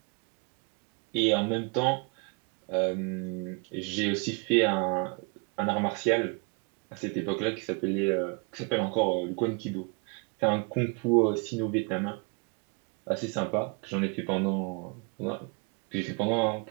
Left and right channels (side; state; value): left; quieter; 34.1 dB